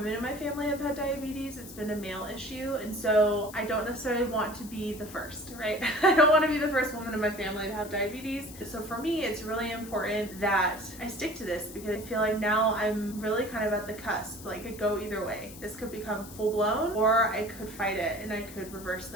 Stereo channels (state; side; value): noise; left; hiss, 16 dB below the sound